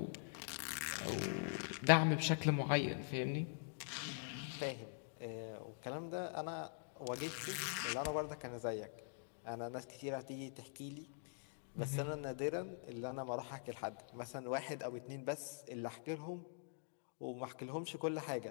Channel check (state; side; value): silent; right; digital silence